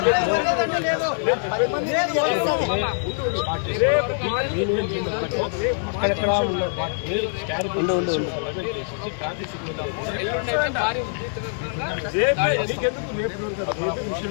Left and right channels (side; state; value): right; silent; digital silence